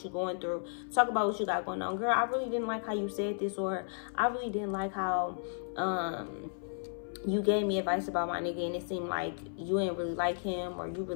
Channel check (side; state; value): right; silent; 55 dB below the other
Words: you're going through. Talk about what you got going on. Girl, I really didn't like how you said this, or I really didn't like how you gave me advice about my nigga and it seemed like you ain't really like him, or you